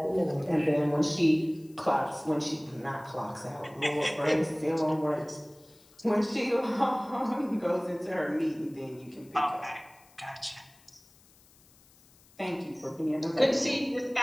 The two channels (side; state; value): left; noise; hiss, 28 dB below the sound